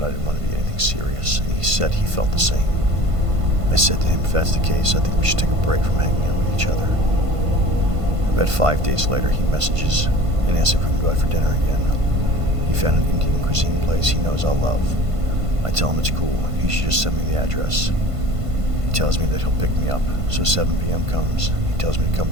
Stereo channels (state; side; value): late; left; 1.5 ms